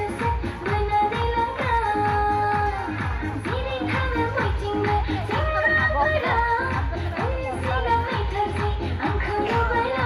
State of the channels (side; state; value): both; identical; correlation 1.00